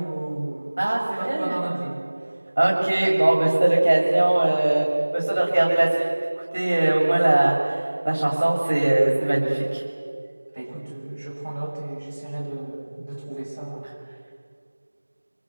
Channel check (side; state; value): both; inverted; correlation -1.00